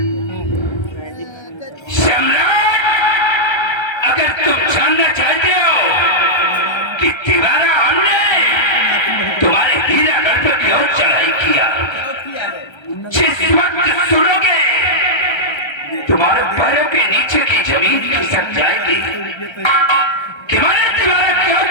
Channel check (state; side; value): late; right; 1.3 ms